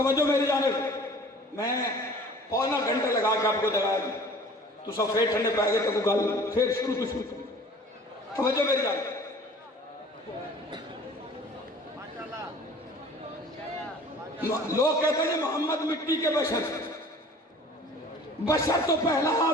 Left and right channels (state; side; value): normal; both; correlation 0.46